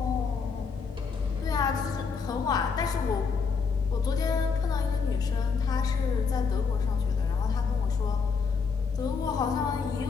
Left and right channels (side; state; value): right; quieter; 5.4 dB